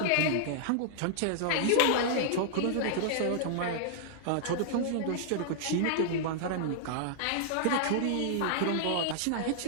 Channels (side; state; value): both; different; correlation -0.01